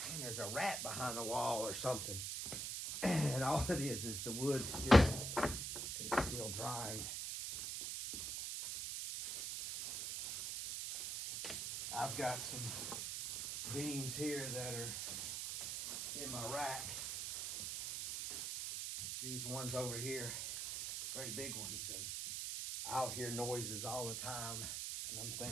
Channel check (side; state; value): right; noise; hiss, 3 dB below the sound